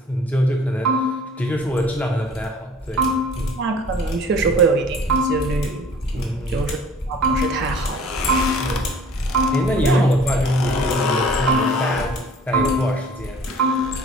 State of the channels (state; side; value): normal; both; correlation 0.50